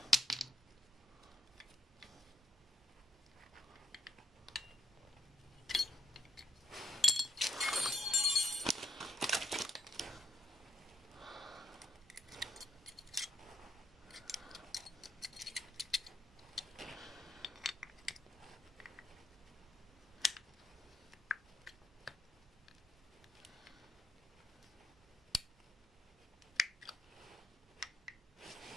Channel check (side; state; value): both; normal; correlation 0.71